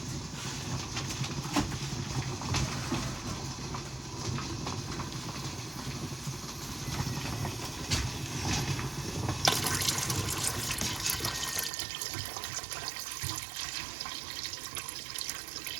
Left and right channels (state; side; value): drops out; left; at 11.7 s